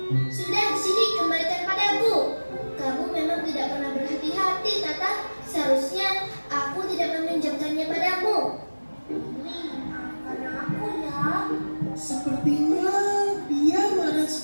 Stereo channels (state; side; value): inverted; both; correlation -1.00